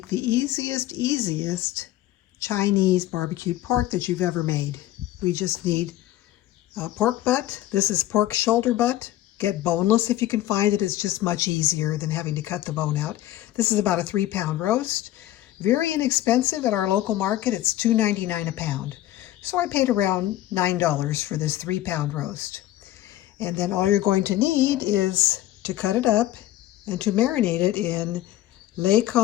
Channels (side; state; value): right; quieter; 14.6 dB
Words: the easiest Chinese barbecued pork that you've ever made. We just need pork butt. This is pork shoulder butt. Get boneless if you can find it. It's just much easier than having to cut the bone out. This is about a 3-pound roast. Very inexpensive at our local market. It's $2.99 a pound. So I paid around $9 for this 3-pound roast. And then all you're going to need is to cut it up and to marinate it in